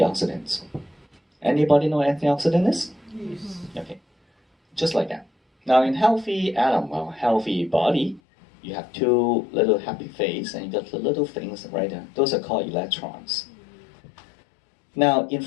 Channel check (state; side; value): drops out; right; at 8.2 s